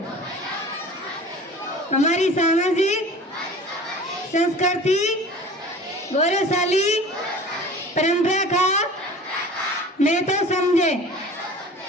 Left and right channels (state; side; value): normal; both; correlation 0.41